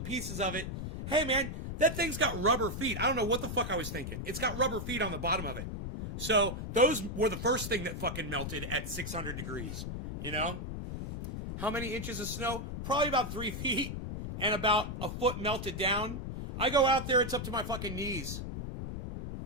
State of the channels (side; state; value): left; noise; rumble, 6 dB below the sound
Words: of it. Hey, man, that thing's got rubber feet. I don't know what the fuck I was thinking. It's got rubber feet on the bottom of it. So those were the first thing that fucking melted at 600 degrees, How many inches of snow? Probably about 3 feet, and about a foot melted down. I go out there, it's up to my fucking knees.